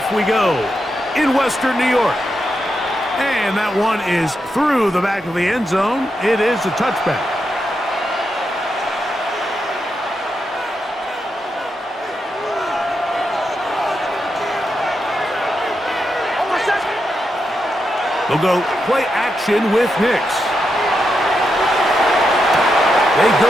we go in Western New York. And that one is through the back of the end zone. It is a touchback. They'll go play action with Nix. They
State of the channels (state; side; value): normal; both; correlation 0.85